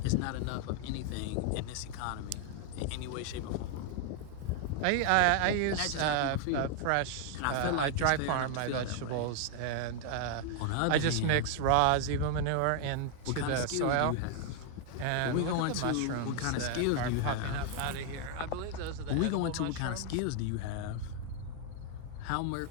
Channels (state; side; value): different; both; correlation 0.00